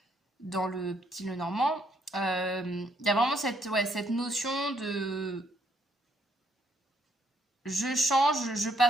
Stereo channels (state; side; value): normal; both; correlation 0.71